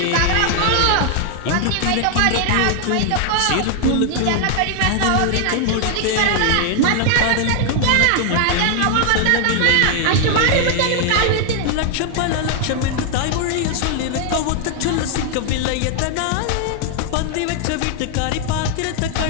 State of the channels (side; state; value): both; different; correlation 0.00